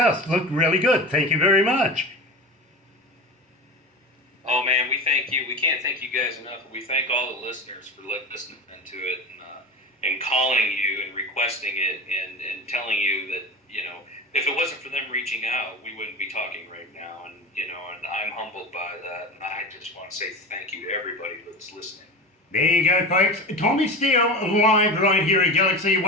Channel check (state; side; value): normal; both; correlation 0.27